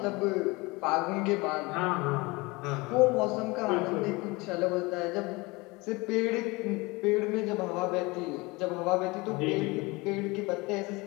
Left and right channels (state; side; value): quieter; right; 24.4 dB